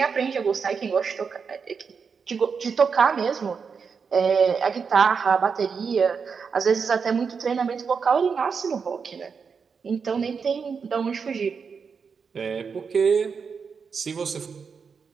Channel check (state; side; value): quieter; left; 5.8 dB